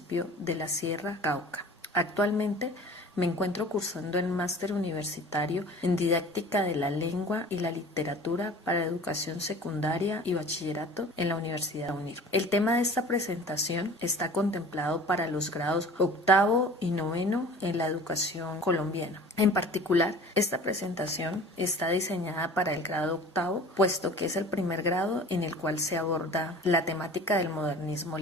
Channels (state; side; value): normal; both; correlation 0.43